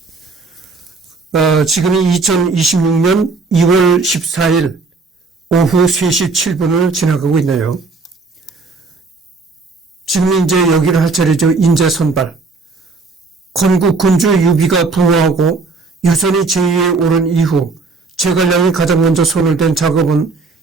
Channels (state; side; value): quieter; left; 4.0 dB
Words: 지금이 2026년 2월 14일 오후 3시 7분을 지나가고 있네요. 지금 이제 여기를 할 차례죠. 인재 선발. 건국 군주 유비가 부호하고 유선이 제위에 오른 이후 제갈량이 가장 먼저 손을 댄 작업은